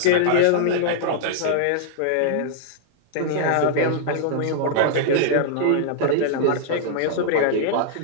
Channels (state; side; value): different; both; correlation -0.01